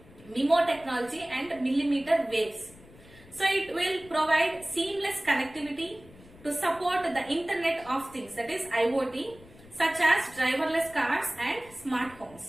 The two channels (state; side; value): noise; left; rumble, 22 dB below the sound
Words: MIMO technology and millimeter waves. So it will provide seamless connectivity to support the Internet of Things, that is IoT, such as driverless cars and smart